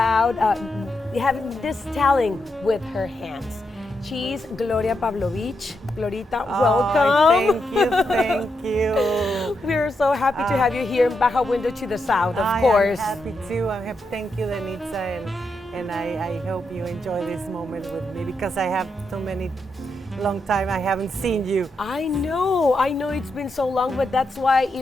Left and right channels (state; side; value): normal; both; correlation 0.83